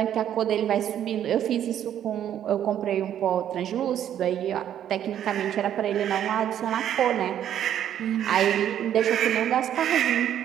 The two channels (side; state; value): left; quieter; 10.4 dB